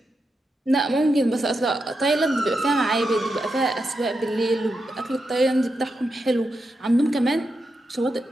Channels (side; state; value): both; normal; correlation 0.87